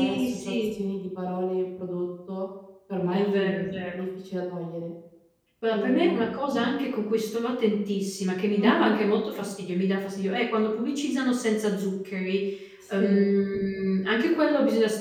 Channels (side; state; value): both; identical; correlation 1.00